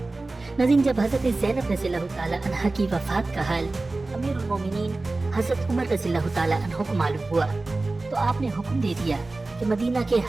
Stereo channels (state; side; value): quieter; left; 3.2 dB